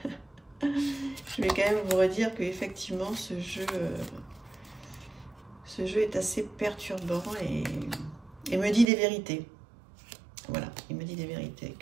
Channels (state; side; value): drops out; left; at 8.8 s